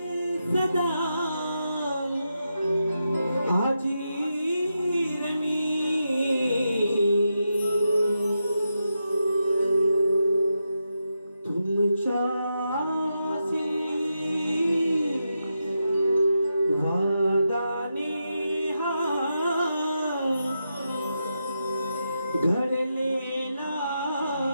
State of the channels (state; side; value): inverted; both; correlation -0.86